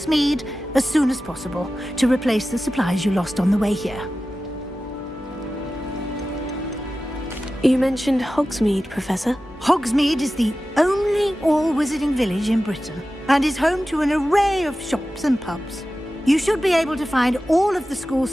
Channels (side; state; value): both; normal; correlation 0.94